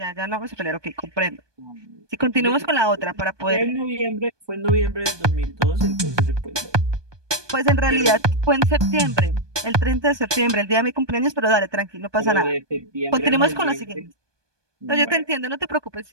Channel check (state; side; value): late; left; 1.2 ms